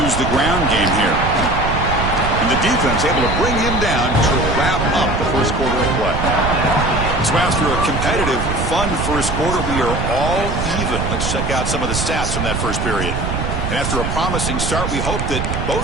use the ground game here. And the defense able to bring him down to wrap up the first quarter of play. So after a competitive, fun first quarter, we are all even. Let's check out some of the stats from that first period. And after a promising start, we hope that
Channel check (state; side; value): noise; right; rumble, 2 dB below the sound